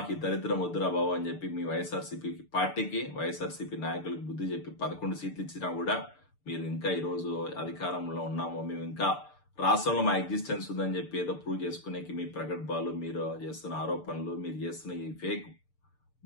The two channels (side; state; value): right; late; 6.8 ms